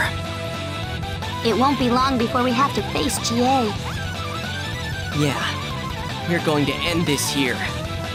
It won't be long before we have to face Jie. Yeah. We're going to end this here.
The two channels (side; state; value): both; identical; correlation 1.00